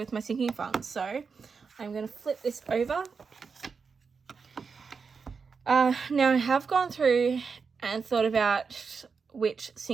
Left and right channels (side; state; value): left; quieter; 5.3 dB